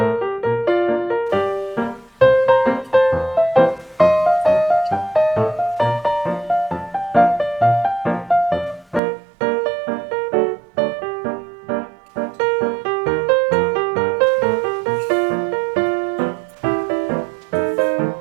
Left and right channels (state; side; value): drops out; left; at 9.0 s